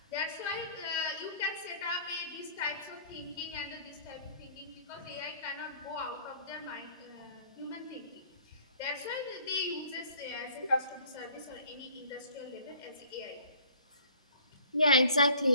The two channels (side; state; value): both; inverted; correlation -0.53